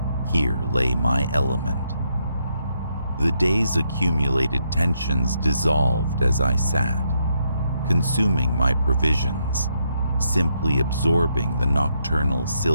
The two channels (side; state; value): both; inverted; correlation -0.77